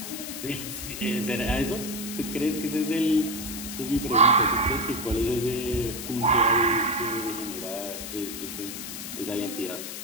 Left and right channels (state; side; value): noise; left; hiss, 8 dB below the sound